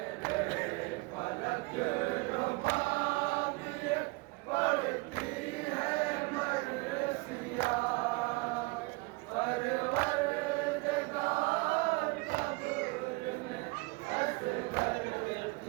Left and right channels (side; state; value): left; quieter; 25.8 dB